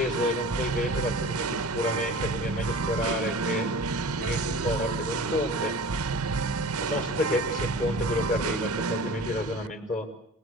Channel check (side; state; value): both; normal; correlation 0.38